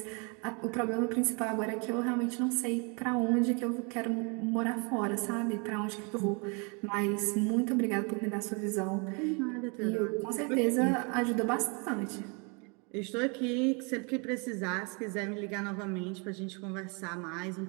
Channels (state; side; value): quieter; left; 33.3 dB